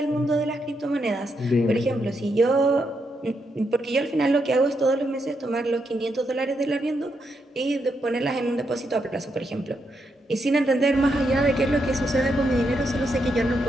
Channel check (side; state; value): both; normal; correlation 0.81